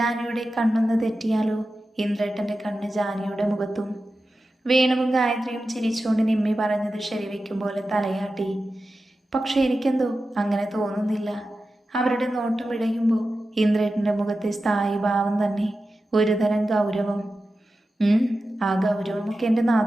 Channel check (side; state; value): both; normal; correlation 0.93